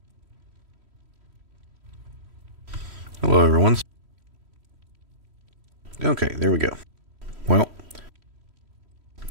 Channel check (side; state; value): left; late; 3.1 ms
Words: Hello everyone. Okay, there we go. Well,